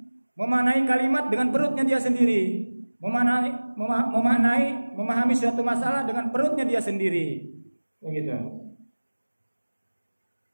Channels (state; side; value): inverted; both; correlation -1.00